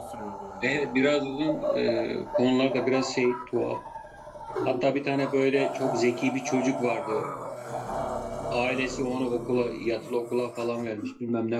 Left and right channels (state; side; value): identical; both; correlation 1.00